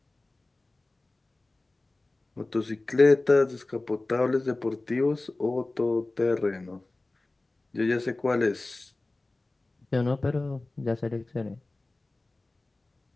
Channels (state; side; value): quieter; right; 3.0 dB